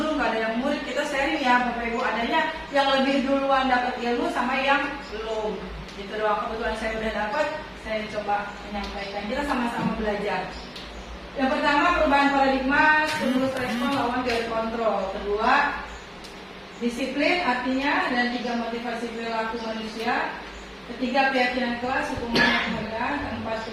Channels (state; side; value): identical; both; correlation 1.00